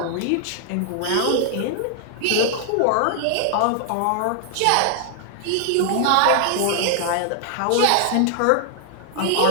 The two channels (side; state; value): both; different; correlation 0.00